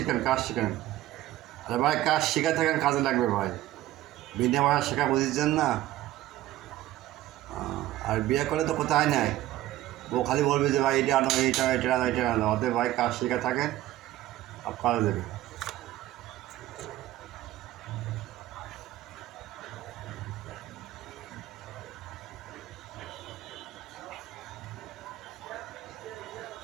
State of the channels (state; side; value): quieter; left; 14.8 dB